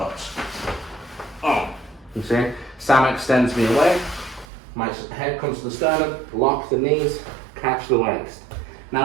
Oh, you see? Sam extends me away, my head comes to the sternum, lock the knees, catch the waist.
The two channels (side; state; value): left; drops out; at 4.5 s